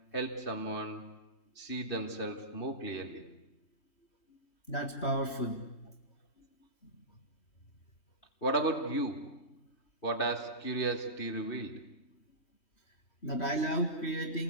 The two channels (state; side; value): late; right; 3.2 ms